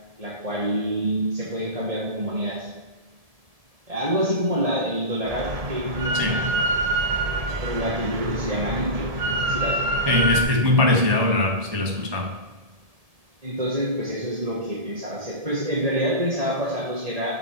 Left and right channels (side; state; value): left; late; 1.7 ms